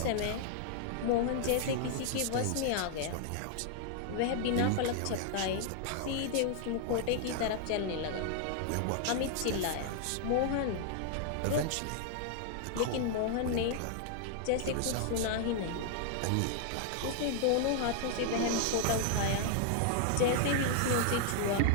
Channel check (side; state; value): both; different; correlation 0.00